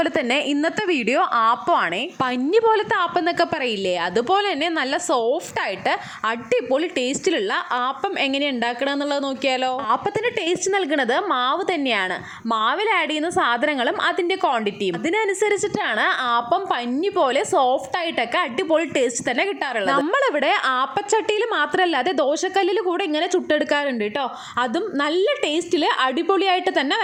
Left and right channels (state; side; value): identical; both; correlation 1.00